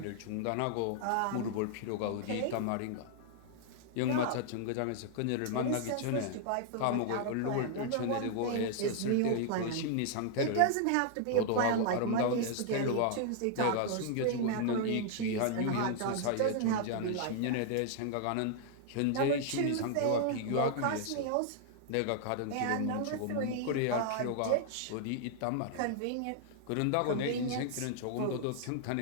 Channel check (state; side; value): different; both; correlation 0.00